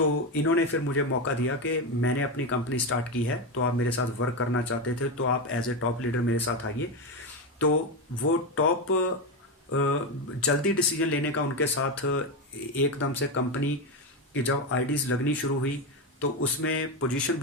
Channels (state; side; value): normal; both; correlation 0.12